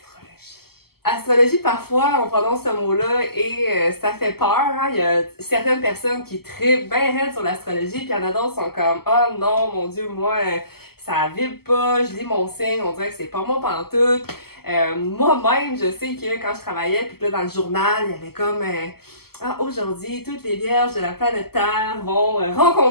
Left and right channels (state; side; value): late; right; 0.95 ms